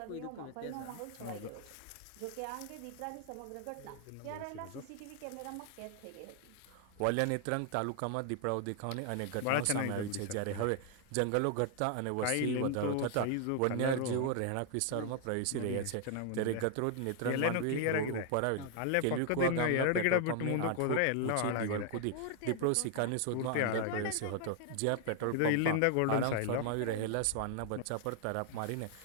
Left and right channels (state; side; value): different; both; correlation 0.00